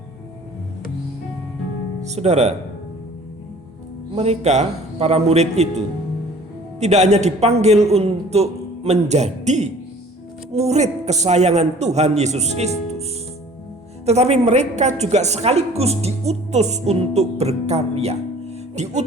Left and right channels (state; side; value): normal; both; correlation 0.50